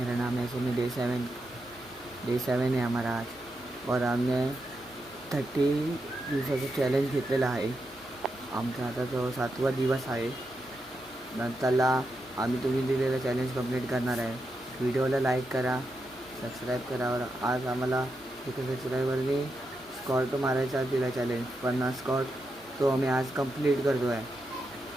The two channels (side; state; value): both; normal; correlation 0.85